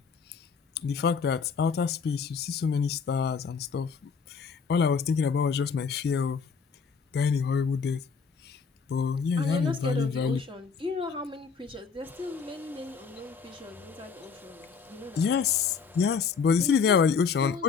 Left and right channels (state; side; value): quieter; right; 5.7 dB